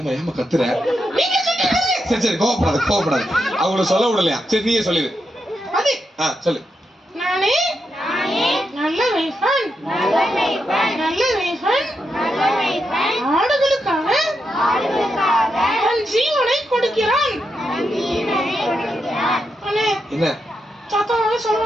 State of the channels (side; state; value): both; normal; correlation 0.84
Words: ஏமா கத்துற? சரி சரி கோவப்படாது. அவங்கள சொல்ல விடலையா? சரி நீயே சொல்லிடு. சொல்லு. நானே நல்ல மேய்ப்பன். நல்ல மேய்ப்பன் ஆடுகளுக்காக தன் ஜீவனை கொடுக்கிறான். என்ன சத்தமாவே சொல்ல